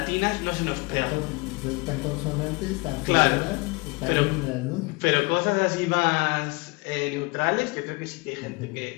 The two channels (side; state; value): right; quieter; 26.5 dB